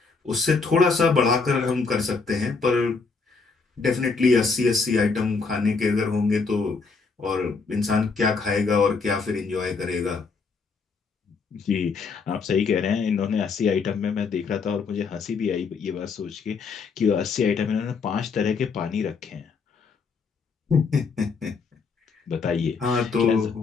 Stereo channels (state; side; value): quieter; right; 4.8 dB